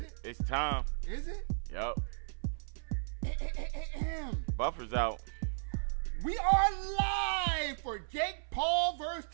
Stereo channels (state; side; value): silent; left; 54 dB below the other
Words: It's time. Is it? Yup. Buffer's out. We are live for Jake Paul versus